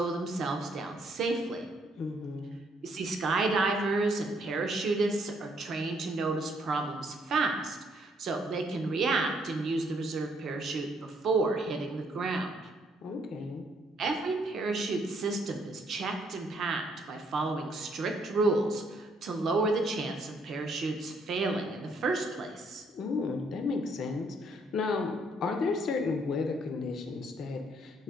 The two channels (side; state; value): both; normal; correlation 0.69